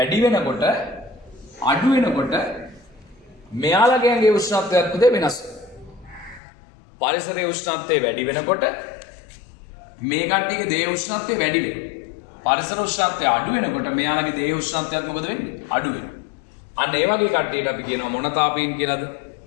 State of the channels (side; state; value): right; drops out; at 6.4 s